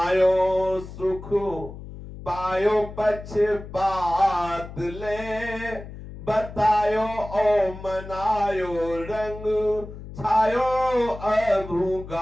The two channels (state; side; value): noise; left; hum, 13 dB below the sound